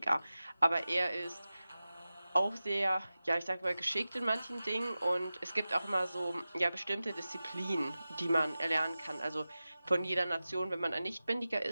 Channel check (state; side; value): inverted; both; correlation -0.96